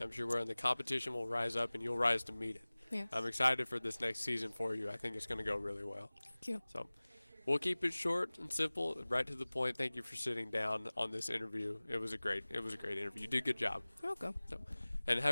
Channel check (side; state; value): both; inverted; correlation -1.00